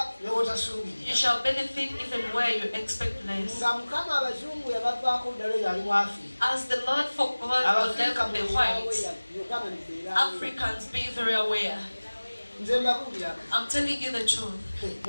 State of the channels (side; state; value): both; inverted; correlation -1.00